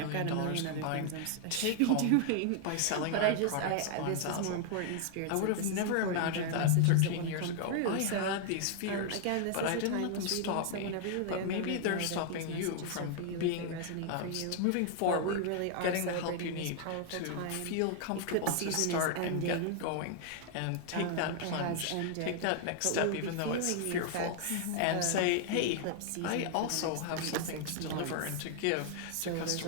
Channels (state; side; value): different; both; correlation 0.00